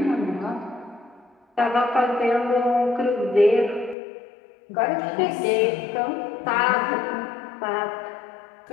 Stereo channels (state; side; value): drops out; right; at 4.0 s